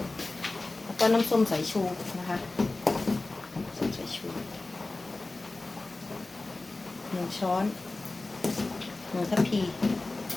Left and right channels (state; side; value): quieter; right; 3.2 dB